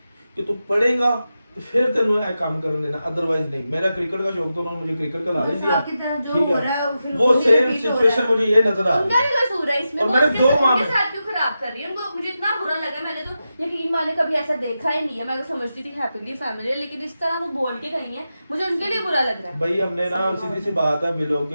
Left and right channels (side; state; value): both; inverted; correlation -0.90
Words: कि तू पढ़ेगा तो फिर तेरे को काम करने देना, अदरवाइज नहीं। मेरा क्रिकेट का शौक तो उन्होंने मुझे क्रिकेट का लालच दिया, आपकी तरह जो ठीक हो है। रहा है, फिर वो वही सेम repeat हो सिचुएशन रहा है। मुझे ये नजर आ उनका रही भी कसूर है इसमें, और वो मैंने उसके 2 उनके मामले- साथ क्यों खराब कर रही है उनको? मुझे इतना बुरा लगा, मैंने तो यकीन माने कभी ऐसा देखा ही नहीं है। मैं तो समझती थी हैप्पीली फैमिली है, लेकिन इस तरह वो बोल के गई है, मुझे उनके लिए बुरा लग रहा है। भाई। हमने ना सीधी सी बात है,